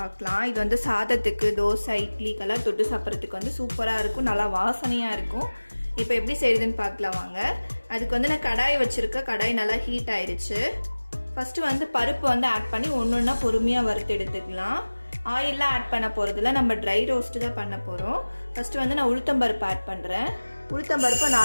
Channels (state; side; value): inverted; both; correlation -1.00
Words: இது வந்து சாதத்துக்கு, தோசை, இட்லிக்கெல்லாம் தொட்டு சாப்பிட்றதுக்கு வந்து சூப்பராக இருக்கும், நல்லா வாசனையாக இருக்கும். இப்போ எப்படி செய்கிறதுன்னு பார்க்கலாம் வாங்க. அதுக்கு வந்து நான் கடாய் வச்சுருக்கேன். கடாய் நல்லா ஹீட் ஆயிடுச்சு. ஃபஸ்ட்டு வந்து பருப்பு வந்து ஆட் பண்ணி ஒன்று ஒன்றா பொறுமையாக வறுத்து எடுத்துக்கலாம். ஆயிலெலாம் ஆட் பண்ண போகிறதில்ல, நம்ம ட்ரை ரோஸ்ட்டு தான் பண்ண போகிறோம். ஃபஸ்ட்டு வந்து நான் உளுத்தம்பருப்பு ஆட் பண்ணுறேன். உளுத்தம்பருப்பு